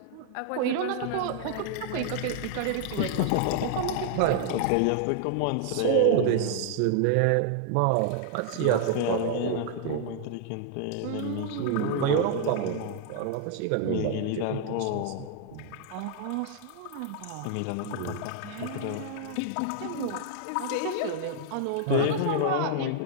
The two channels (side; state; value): both; different; correlation -0.01